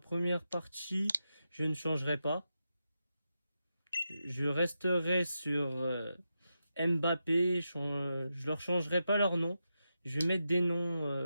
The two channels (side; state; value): both; inverted; correlation -0.87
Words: partie, je ne changerai pas. Je resterai sur Mbappé, je leur changerai pas leur nom. Je vais mettre des